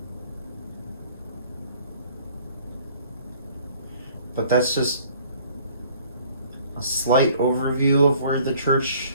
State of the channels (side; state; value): both; inverted; correlation -0.56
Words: But that's just a slight overview of where the